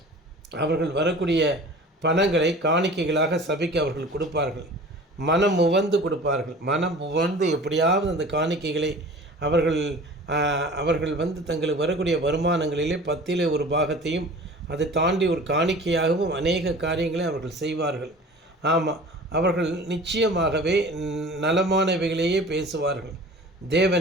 அவர்கள் வரக்கூடிய பணங்களை காணிக்கைகளாக சபைக்கு அவர்கள் கொடுப்பார்கள். மனம் உவந்து கொடுப்பார்கள். மனம் உவந்து எப்படியாவது அந்த காணிக்கைகளை அவர்கள் தங்களுக்கு வரக்கூடிய வருமானங்களிலே 10 ஒரு பாகத்தையும் அதை தாண்டி ஒரு காணிக்கையாகவும் அநேக காரியங்களை அவர்கள் செய்வார்கள். ஆமாம், அவர்கள் நிச்சயமாகவே நலமானவைகளையே பேசுவார்கள்.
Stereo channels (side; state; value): both; normal; correlation 0.42